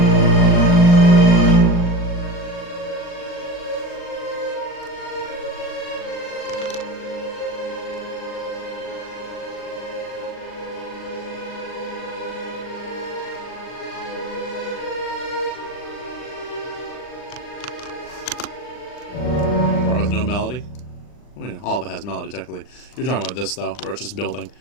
Melody. I mean, all of it has melody technically. You're talking about this though, where it's just building.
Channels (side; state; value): right; late; 40 ms